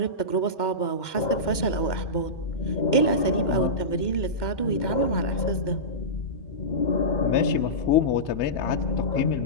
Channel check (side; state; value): right; late; 2.1 ms